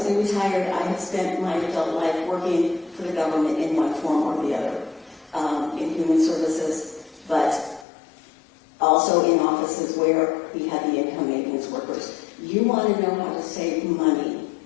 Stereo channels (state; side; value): drops out; right; at 7.9 s